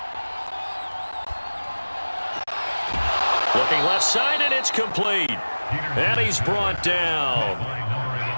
Looking left side, and it's complete. And he's brought down.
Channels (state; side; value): inverted; both; correlation -1.00